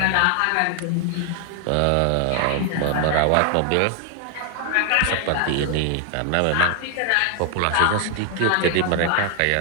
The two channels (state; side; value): different; both; correlation 0.00